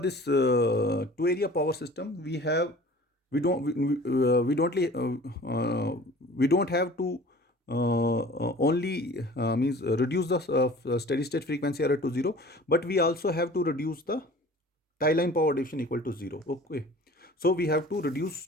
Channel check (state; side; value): normal; both; correlation 0.45